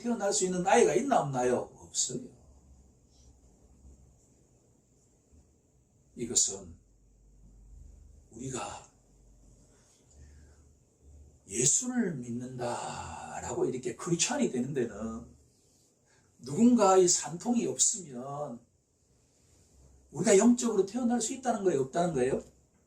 수 있는 아이가 있나 없나요? 없어요. 이것은 우리가 예수를 믿는다라고 이렇게 크리스찬이 되는 데는 누군가의 산통이 없으면 우리가 영적으로 태어날 수 있다는 거예요? 없다는 거예요?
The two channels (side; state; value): both; identical; correlation 1.00